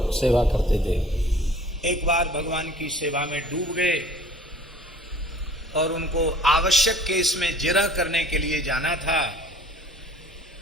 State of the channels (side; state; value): both; normal; correlation 0.51